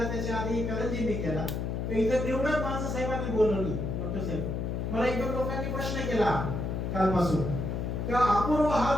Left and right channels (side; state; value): left; noise; hum, 2 dB below the sound